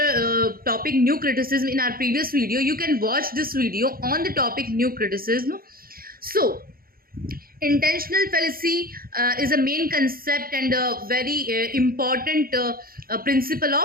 topic new criticism in our previous video. You can watch this video on the topic new criticism. So, intentional fallacy is a main concept and a very important principle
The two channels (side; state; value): left; late; 0.42 ms